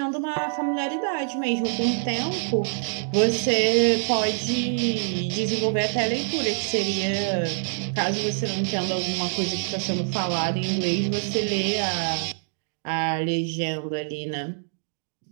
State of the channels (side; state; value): left; silent; digital silence